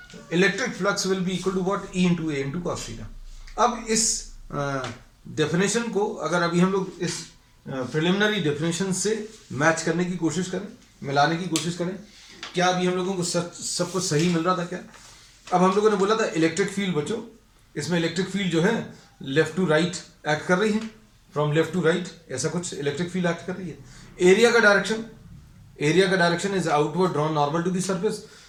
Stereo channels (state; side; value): identical; both; correlation 1.00